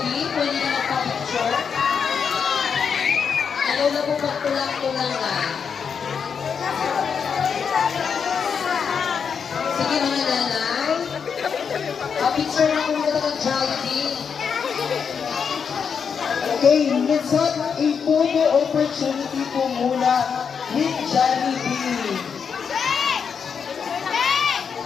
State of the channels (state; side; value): quieter; right; 6.5 dB